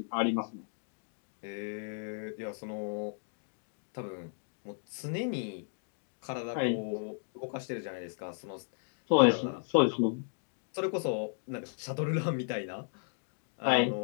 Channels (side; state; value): right; silent; digital silence